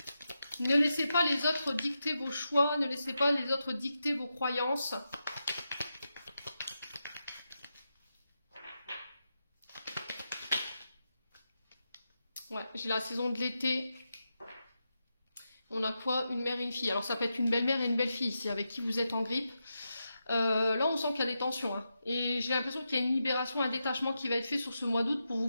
Ne laissez pas les autres dicter vos choix. Ne laissez pas les autres dicter vos croyances. Ouais, j'ai la saison de l'été. On a quoi? Une mère et une fille. Alors ça peut être une belle-mère et une belle-fille ici, avec qui vous êtes en grippe. Là, on sent qu'il y a des tensions. Hein. Et j'ai l'impression qu'il y a une libération, un détachement qui va être fait sur ce mois d'août pour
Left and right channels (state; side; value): inverted; both; correlation -0.88